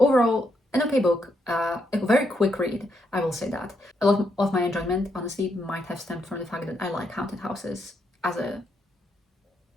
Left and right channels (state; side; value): normal; both; correlation 0.78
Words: an okay book, a very quick read, I will say that. A lot of my enjoyment, honestly, might have stemmed from the fact that I like haunted houses as a